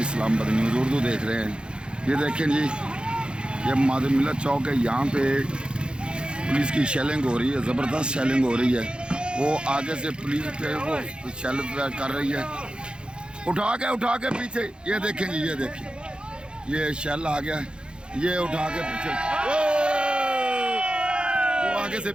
Islamabad news Urdu देख रहे हैं। ये देखें जी, ये माधव मिल्लत चौक है। यहाँ पे पुलिस की शेलिंग हो रही है, ज़बरदस्त शेलिंग हो रही है। वो आगे से पुलिस पे वो शेल कर रही है, उठा के पीछे। ये देखें जी, ये देखें, ये शेल आ गया, ये उठा के पीछे, वो आगे से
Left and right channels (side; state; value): left; late; 0.052 ms